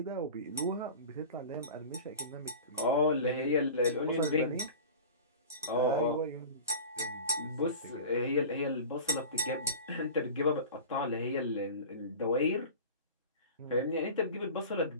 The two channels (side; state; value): both; inverted; correlation -0.35